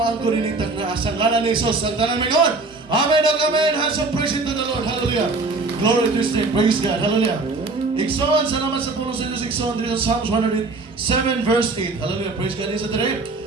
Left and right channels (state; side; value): quieter; left; 3.6 dB